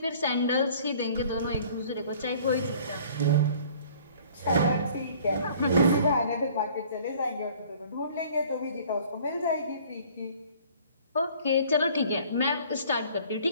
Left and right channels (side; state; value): both; inverted; correlation -0.52